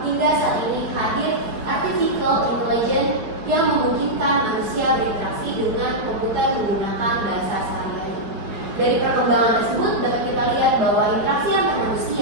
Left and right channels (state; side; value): late; left; 4.6 ms